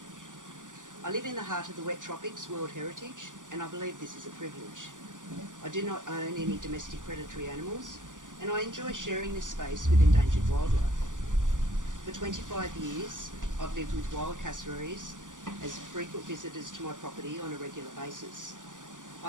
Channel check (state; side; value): late; left; 0.87 ms